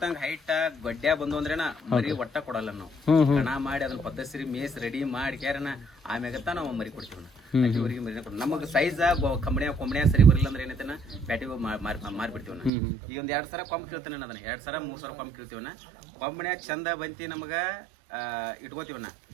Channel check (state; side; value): drops out; left; at 12.7 s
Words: ತಂಗ ಹೈಟ್ ಗಡ್ಡ್ಯಾ ಬಂದು ಅಂದ್ರೇನ ಮರಿ ಒಟ್ಟ ಕೊಡಲ್ಲ ನಾವು. ಕಣ ಮಾಡಿ ಅದನ್ನ ಪದ್ಧತಿ ಮೇಸ್ ರೆಡಿ ಮಾಡಿ ಕ್ಯಾರನ ಆಮ್ಯಾಗತ್ತ ನಾವು ಮರಿ ಕೊಡ್ತೀವಿ. ಊರಿಗೆ ಮರಿ ನಮಗ್ ಸೈಜ್ ಕೊಂಬಣ್ಯಾ ಸರಿ ಬರಲಿಲ್ಲ ಅಂದ್ರೆ ಏನೈತೆನ ಪ್ಯಾಟಿಗೆ ಮಾರ್ಬಿಡ್ತೀವಿ. ಈಗ ಒಂದ್ 2 ಸಲ ಕೊಂಬ್ ಕೀಳ್ತಾನೆ ಅದನ್ನ 2 ಸಲ 3 ಸಲ ಕೊಂಬ್ ಕೀಳ್ತೀವನ. ಕೊಂಬಣ್ಯಾ ಚಂದ ಬಂತಿ ನಮಗ ಇಟ್ಕೋತೀವನ.